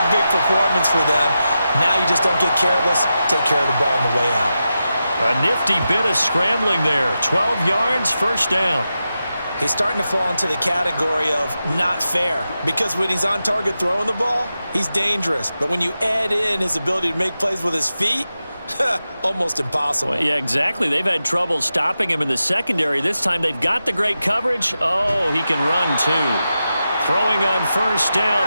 big performance for them. Now you just don't get careless. Take care of the ball on the way out. A nifty bit of scrambling there. 12 yards, first down. He's starting to fall into the category of not fair, because when he's on target throwing the ball, he's dangerous. But when you add in his ability to make plays with his feet, almost impossible. Well, yeah, exactly. They've had trouble stopping him in the secondary. This time they've got the great coverage. Oh, he can run too. Throwing on first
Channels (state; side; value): inverted; both; correlation -0.90